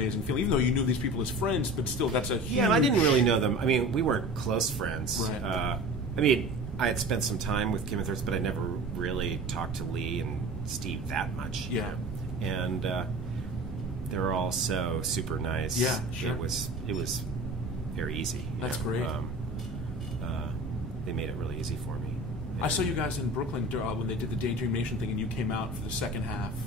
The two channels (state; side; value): noise; right; rumble, 11 dB below the sound